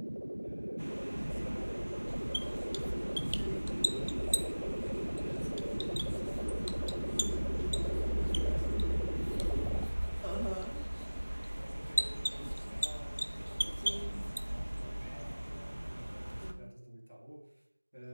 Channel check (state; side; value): inverted; both; correlation -1.00